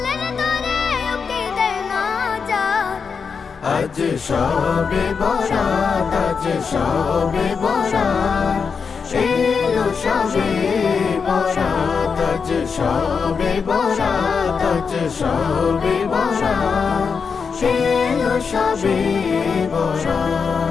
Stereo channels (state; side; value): quieter; right; 5.7 dB